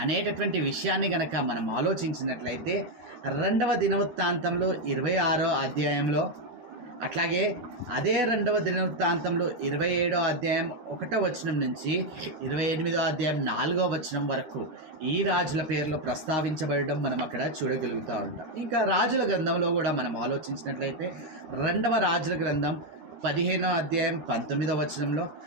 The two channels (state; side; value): late; left; 13 ms